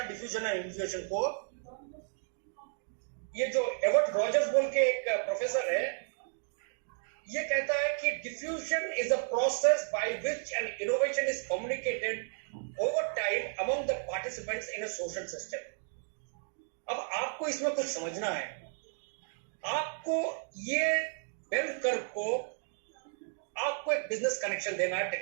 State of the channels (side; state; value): left; silent; digital silence